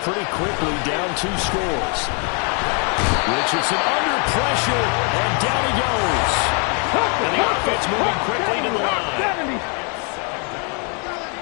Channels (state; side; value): quieter; right; 37.5 dB